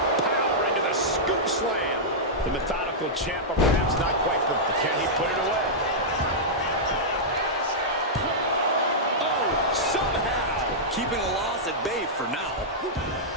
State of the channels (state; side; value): normal; both; correlation -0.10